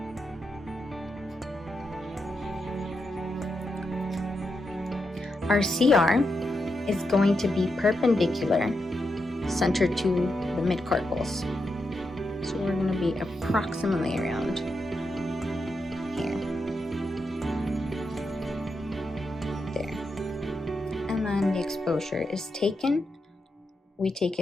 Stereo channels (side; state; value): both; normal; correlation 0.85